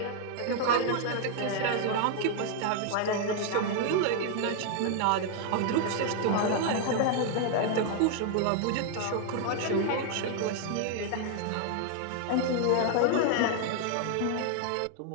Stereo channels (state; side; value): different; both; correlation 0.00